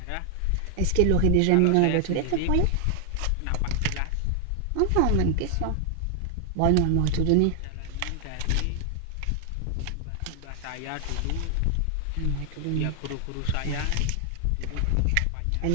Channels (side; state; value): both; different; correlation 0.00